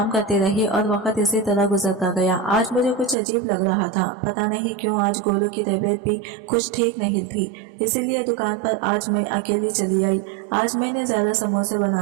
करती रही और वक्त इसी तरह गुजरता गया। आज मुझे कुछ अजीब लग रहा था। पता नहीं क्यों आज गोलू की तबीयत भी कुछ ठीक नहीं थी, इसीलिए दुकान पर आज मैं अकेली चली आई। आज मैंने ज्यादा समोसे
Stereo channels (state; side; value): drops out; left; at 3.2 s